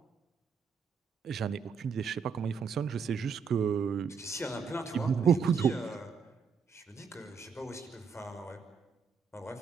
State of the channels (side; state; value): left; quieter; 5.9 dB